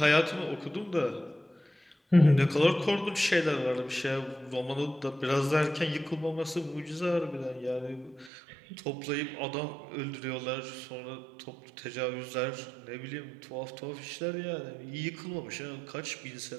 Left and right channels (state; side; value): drops out; left; at 8.3 s